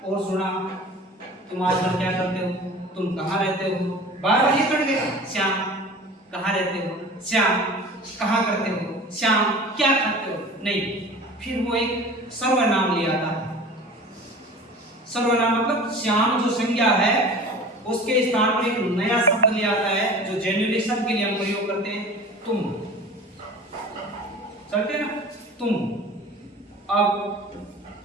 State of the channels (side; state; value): both; normal; correlation 0.40